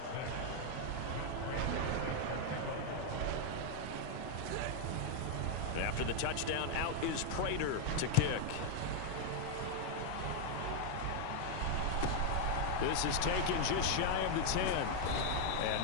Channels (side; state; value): both; different; correlation 0.01